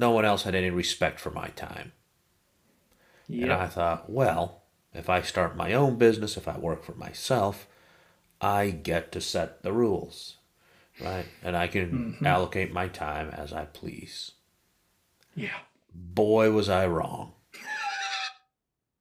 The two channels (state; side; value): identical; both; correlation 1.00